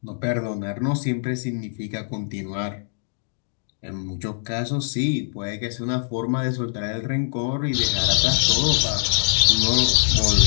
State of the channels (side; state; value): right; silent; digital silence